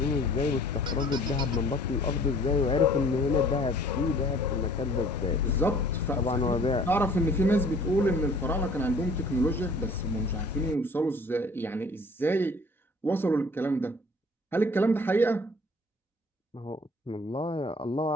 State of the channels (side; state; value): both; normal; correlation 0.52